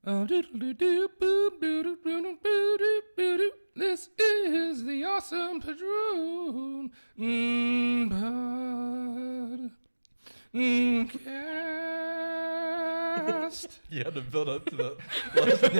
This is the awesome Padron podcast. You had to build up to the last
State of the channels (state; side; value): inverted; both; correlation -1.00